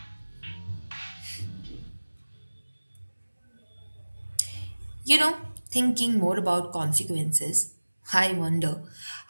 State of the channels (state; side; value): inverted; both; correlation -1.00